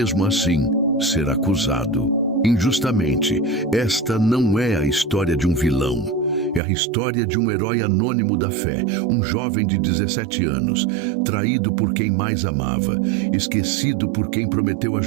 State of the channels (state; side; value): drops out; left; at 6.6 s